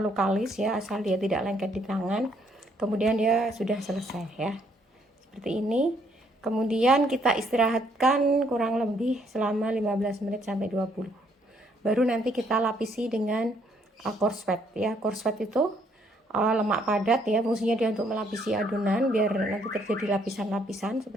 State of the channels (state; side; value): normal; both; correlation 0.68